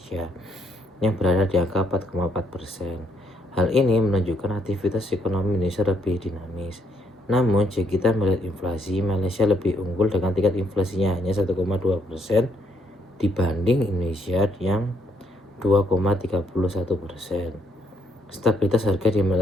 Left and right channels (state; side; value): normal; both; correlation 0.72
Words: yang berada di angka 4,4%. Hal ini menunjukkan aktivitas ekonomi Indonesia lebih dinamis. Namun, jika kita melihat inflasi, Malaysia lebih unggul dengan tingkat inflasinya hanya 1,2% dibanding Indonesia yang 2,31%. Stabilitas harga di